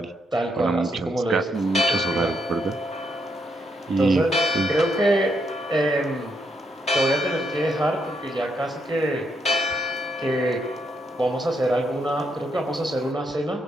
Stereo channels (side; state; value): both; normal; correlation 0.77